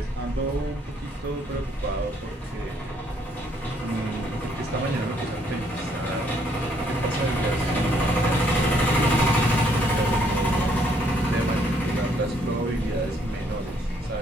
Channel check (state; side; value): normal; both; correlation 0.68